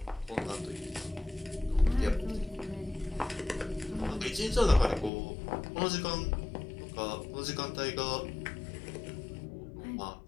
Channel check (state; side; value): drops out; right; at 5.1 s